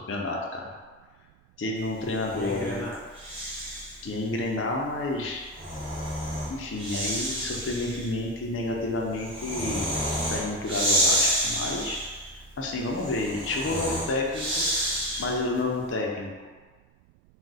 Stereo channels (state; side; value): noise; right; rumble, 30 dB below the sound